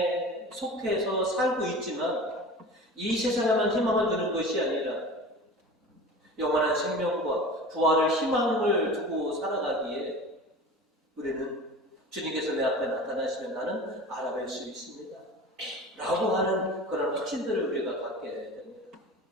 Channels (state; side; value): normal; both; correlation 0.36